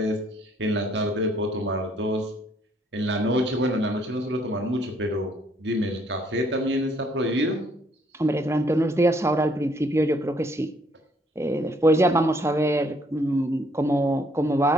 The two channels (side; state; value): both; normal; correlation 0.66